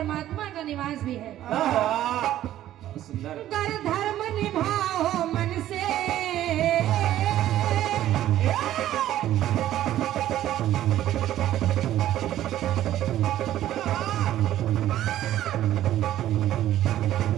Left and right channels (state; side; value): quieter; left; 12.9 dB